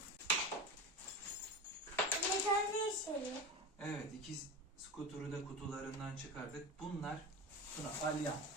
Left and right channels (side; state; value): both; normal; correlation 0.25